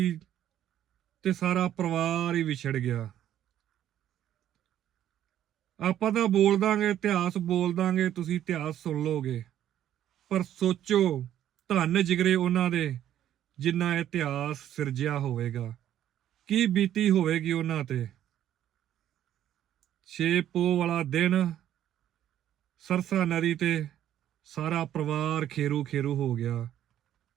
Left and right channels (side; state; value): left; quieter; 11.4 dB